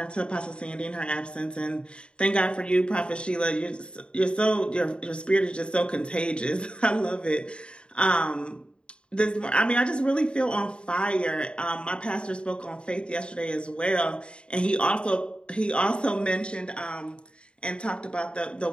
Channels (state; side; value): late; right; 0.053 ms